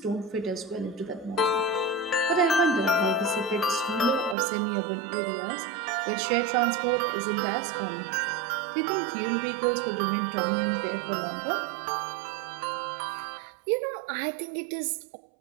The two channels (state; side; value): drops out; left; at 4.4 s